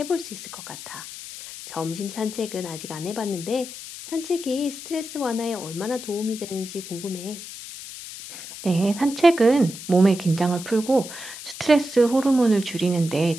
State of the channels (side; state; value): left; noise; hiss, 12 dB below the sound